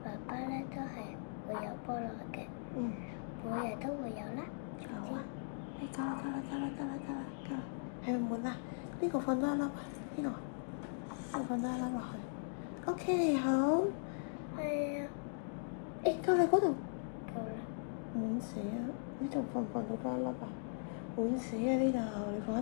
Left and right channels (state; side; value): silent; right; digital silence